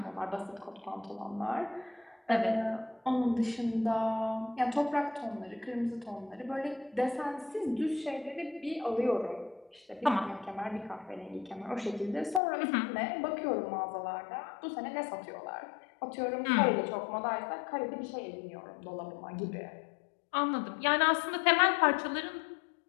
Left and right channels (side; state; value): right; drops out; at 12.4 s